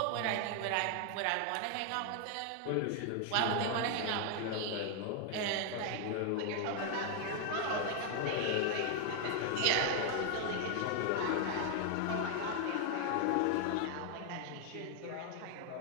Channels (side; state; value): both; different; correlation 0.00